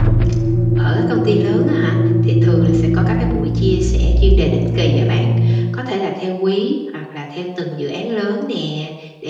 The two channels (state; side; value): identical; both; correlation 1.00